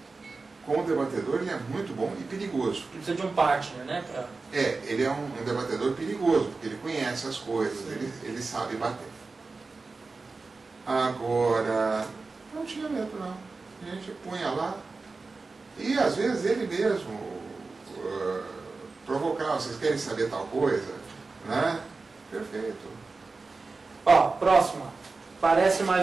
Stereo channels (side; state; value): left; quieter; 3.9 dB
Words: Como debatedor ele é muito bom e perigoso. Ele precisa de um partner, né? Ele é um debatedor perigoso, porque ele conhece as coisas, ele sabe bater. Agora, não tinha medo não. A gente punha lá, e às vezes ele mesmo provocava, vocês querem saber tal coisa? Né? Perfeito. Ó, próxima. Parece,